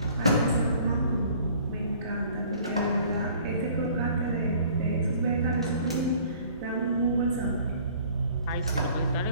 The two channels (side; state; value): both; inverted; correlation -0.53